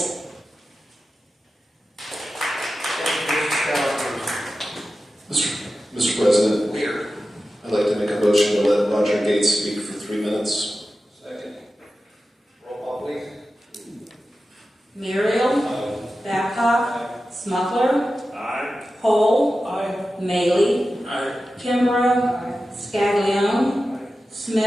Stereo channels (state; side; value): normal; both; correlation 0.93